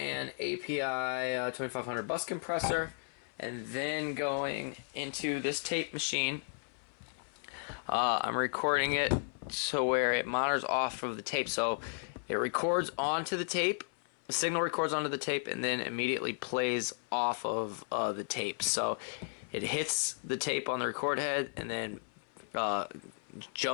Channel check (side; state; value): right; silent; 55 dB below the other